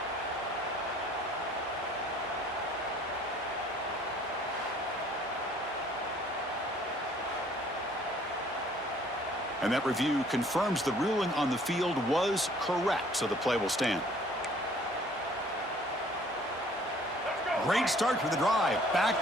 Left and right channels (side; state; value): both; normal; correlation 0.57